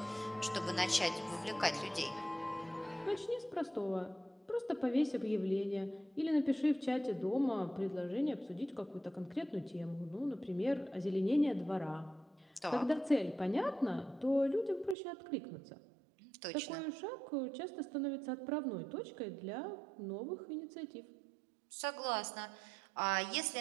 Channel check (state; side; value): drops out; left; at 15.0 s